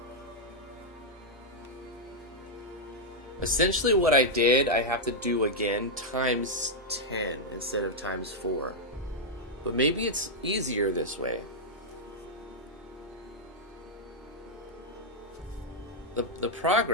Essentially what I did, I have to do again times 10 instead of times 4. But maybe it's easier this way. The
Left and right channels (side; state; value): both; normal; correlation -0.03